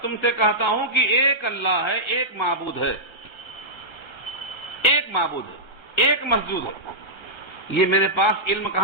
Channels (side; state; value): right; late; 1.3 ms